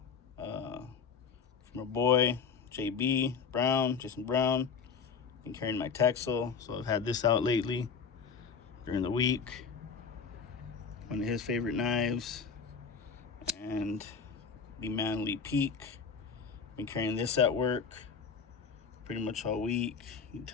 from our boy JB Brown, Jason Brown. Been carrying my Texel, so I've had this out lately during the week. One of his favorite knives, and the MANLY Peak. Been carrying this at work pretty much all week. You can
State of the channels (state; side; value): quieter; right; 6.0 dB